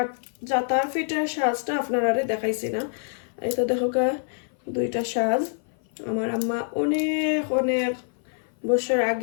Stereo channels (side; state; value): right; silent; 56 dB below the other